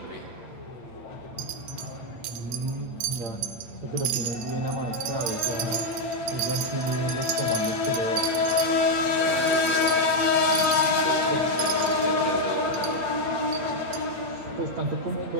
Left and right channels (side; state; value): left; late; 8.8 ms